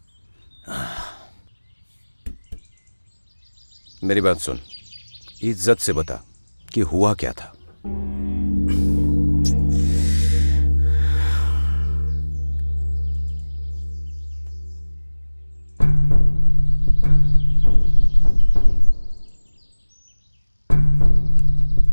मेरी बात सुन, इज्जत से बता कि हुआ क्या था।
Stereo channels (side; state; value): both; inverted; correlation -1.00